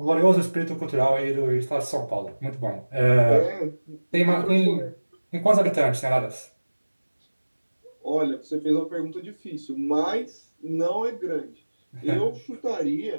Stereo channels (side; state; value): both; inverted; correlation -1.00